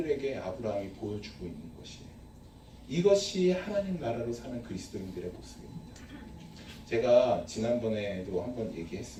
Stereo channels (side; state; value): both; identical; correlation 1.00